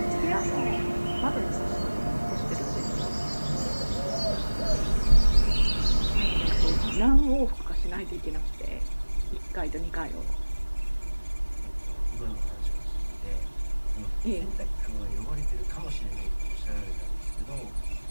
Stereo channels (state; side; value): inverted; both; correlation -1.00